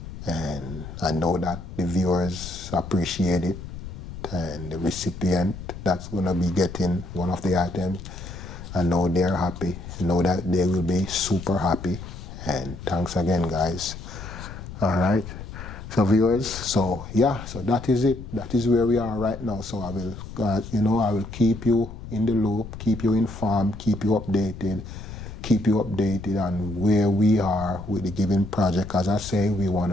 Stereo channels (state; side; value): noise; left; rumble, 11 dB below the sound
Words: And I know that the viewers appreciate it. And the recipient that's going to be getting one of the items, I know they're happy. I know that they will be super happy. And thanks again, guys. All right. So viewers, so yeah, so that is it. That is where we are right now. So I will, I will keep you in the loop, keep you informed, keep you updated on where we are with the given project. As I say, we want